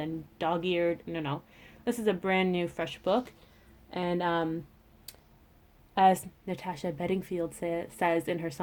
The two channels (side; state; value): both; identical; correlation 1.00